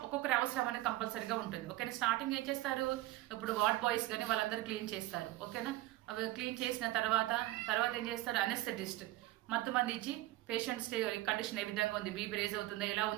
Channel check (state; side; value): quieter; left; 17.1 dB